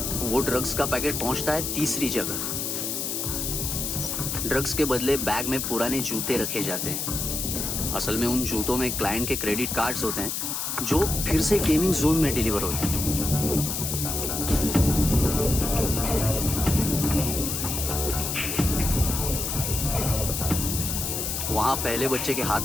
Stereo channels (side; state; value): left; noise; hiss, 2 dB below the sound